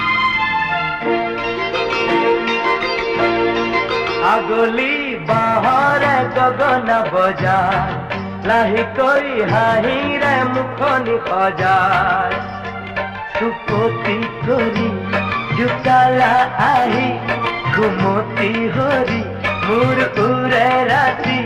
আগলি বাহৰে গগন বজায় লাহেকৈ হাঁহিৰে মুখনি সজায় চুপতি কৰি জোকালা আহি ঘুমতি হৰি মোৰ উৰে ৰাতি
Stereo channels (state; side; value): identical; both; correlation 1.00